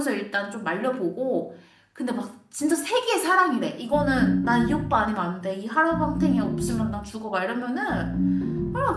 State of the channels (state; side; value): identical; both; correlation 1.00